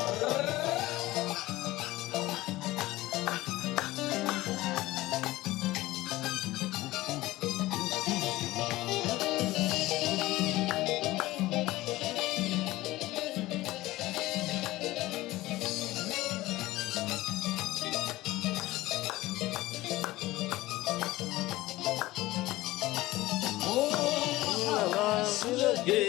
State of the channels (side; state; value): right; quieter; 18.0 dB